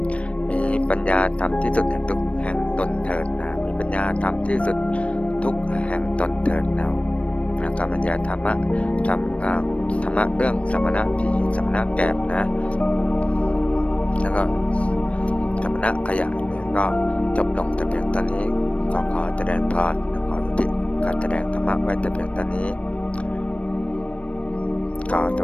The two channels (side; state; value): right; late; 0.062 ms